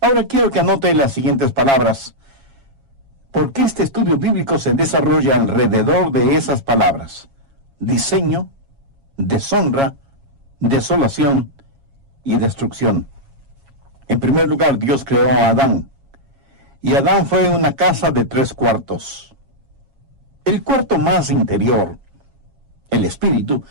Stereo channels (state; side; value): late; left; 7.3 ms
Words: Ahora quiero que anote las siguientes palabras, porque este estudio bíblico se desarrolla alrededor de esas palabras: diseño, deshonra, desolación y destrucción. En primer lugar, Dios creó a Adán, y Adán fue una casa de 3/4. El cuarto más interior, el espíritu,